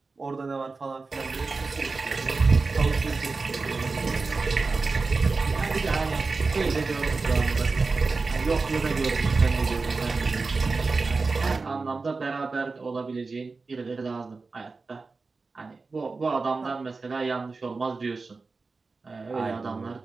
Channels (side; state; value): left; quieter; 4.0 dB